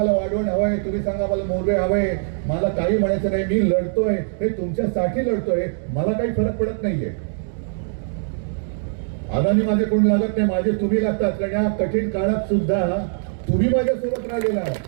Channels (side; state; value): left; silent; digital silence